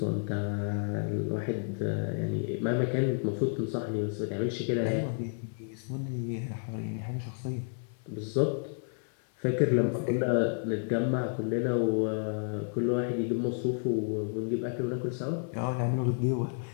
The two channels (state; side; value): silent; right; 57 dB below the other